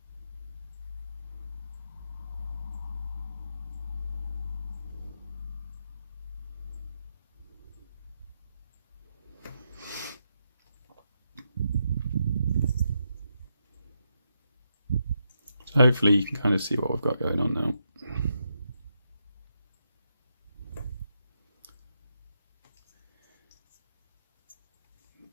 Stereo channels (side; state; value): both; inverted; correlation -0.82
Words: So hopefully you can kind of see what we've got going on now.